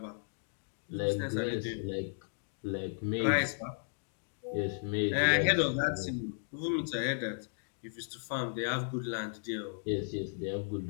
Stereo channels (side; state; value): right; silent; digital silence